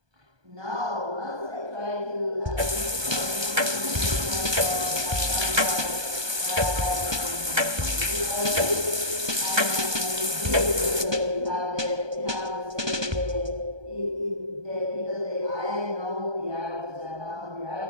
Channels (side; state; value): left; late; 1.2 ms